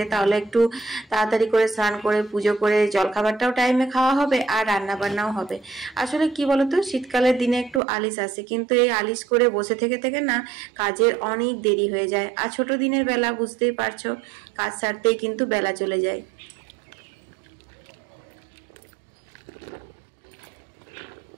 তাহলে একটু তাড়াতাড়ি করে স্নান করে পুজো করে জলখাবারটাও টাইমে খাওয়া হবে আর রান্না বান্নাও হবে। আসলে কি বলতো, শীতকালের দিনে একটু আলিস আসে, কিন্তু এই আলিশ করে বসে থেকে থেকে না কাজের অনেক দেরি হয়ে যায়। আর ছোট দিনের বেলা বুঝতেই পারছো, কাজ সারতেই কিন্তু বেলা চলে যায়।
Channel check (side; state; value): left; drops out; at 7.8 s